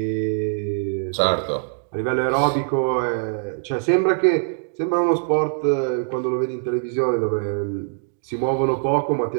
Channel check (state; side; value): silent; left; digital silence